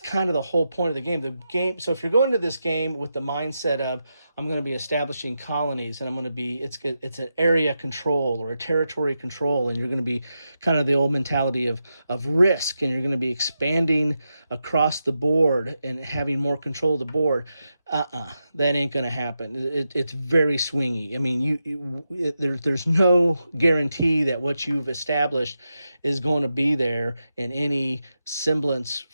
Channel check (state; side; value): inverted; both; correlation -0.88